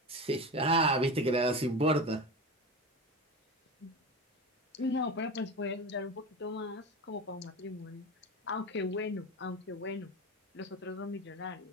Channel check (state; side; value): normal; both; correlation 0.25